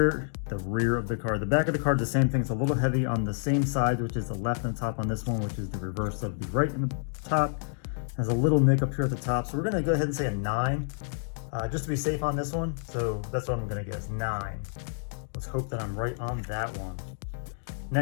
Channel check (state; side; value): silent; right; digital silence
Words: of the card. The back of the card is the same thing. It's a little heavy on the same side, which is the left and the top on this one, which is the reverse of the right and the top. Has a little nick up here at the top. So we're going to go ahead and say a 9. just to be safe on this one. So that's what I'm gonna guess, 9. Let's hope that I'm right on that one.